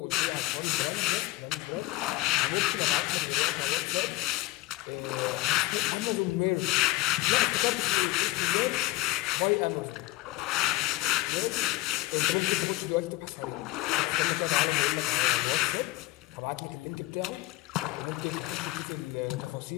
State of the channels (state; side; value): quieter; right; 18.6 dB